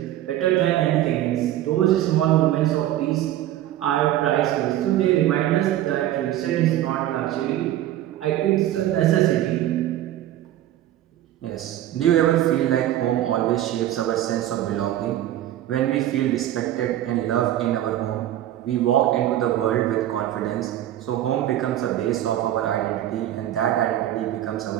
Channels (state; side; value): quieter; left; 12.9 dB